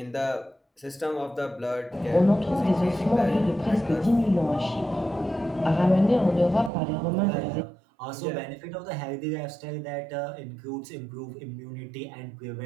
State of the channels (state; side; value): drops out; left; at 6.7 s